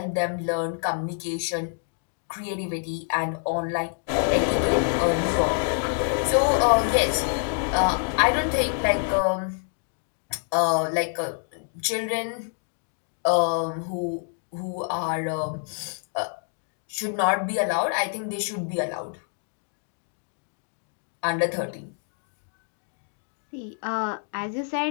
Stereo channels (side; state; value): right; silent; 56 dB below the other